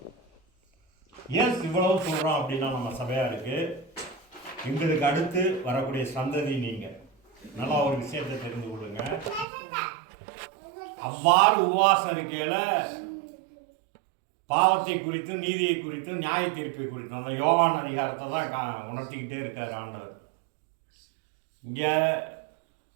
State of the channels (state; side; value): drops out; left; at 9.5 s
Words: ஏன் இவ்வளவு சொல்கிறோம் அப்படின்னா, நம்ம சபையாருக்கு எங்களுக்கு அடுத்து வரக்கூடிய சந்ததி நீங்கள் நல்லா ஒரு விஷயத்தை தெரிந்து கொள்ளுங்க. அவ்வாறு உபவாசம் இருக்கையில் பாவத்தை குறித்தும் நீதியை குறித்தும் நியாய தீர்ப்பை குறித்தும் அந்த யோவான் அதிகாரத்தை தான் உணர்த்திக்கிட்டே இருக்கார் ஆண்டவர். இங்கே